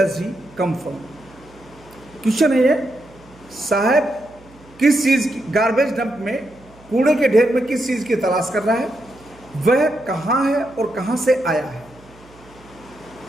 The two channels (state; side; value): noise; right; hum, 25 dB below the sound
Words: he come from. Question है ये, साहब किस चीज़ की, गार्बेज डंप में, कूड़े के ढेर में किस चीज़ की तलाश कर रहा है, वह कहाँ है और कहाँ से आया है।